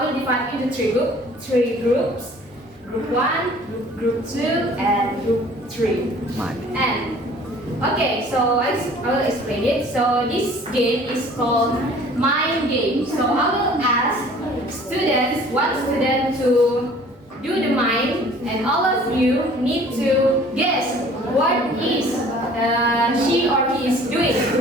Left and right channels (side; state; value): both; normal; correlation 0.51